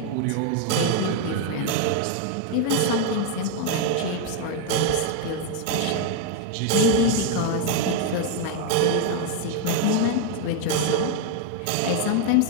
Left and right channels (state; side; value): different; both; correlation 0.01